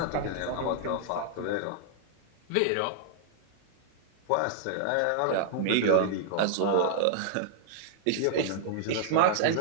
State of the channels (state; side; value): different; both; correlation -0.01